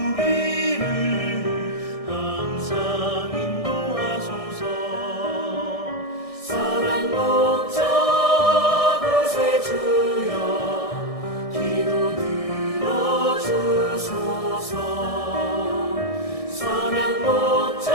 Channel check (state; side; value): late; right; 1.6 ms